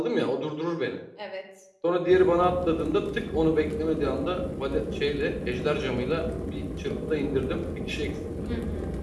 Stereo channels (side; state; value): both; identical; correlation 1.00